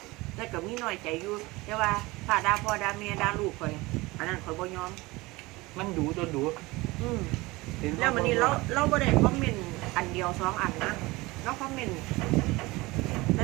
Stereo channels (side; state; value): left; quieter; 21.9 dB